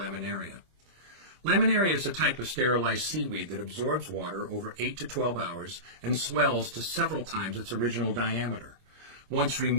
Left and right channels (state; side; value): late; left; 26 ms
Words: Laminaria is a type of sterilized seaweed that absorbs water over 8 to 12 hours and swells to several times its original diameter. Once